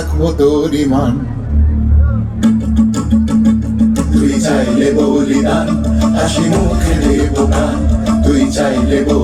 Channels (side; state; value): both; identical; correlation 1.00